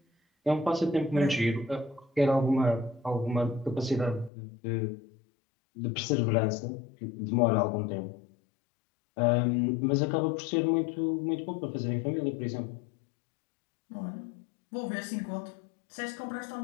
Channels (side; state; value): right; drops out; at 4.3 s